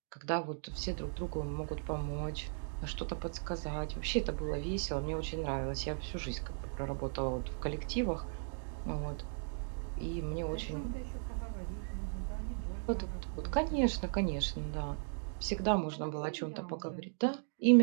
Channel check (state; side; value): silent; left; digital silence